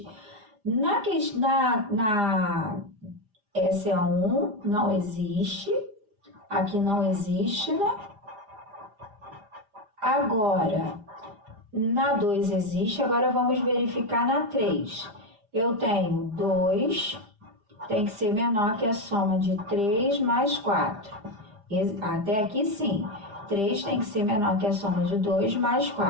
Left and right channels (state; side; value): late; left; 5.0 ms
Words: Essa é a 1, não existe. Aqui não existe, né? Agora, na 2 existe. Agora, vamos verificar na 3. Eu tenho 2, tem que ser menor que a soma de 3 mais 4. Até aqui, sim. 3 tem que ser menor que a soma de 2 mais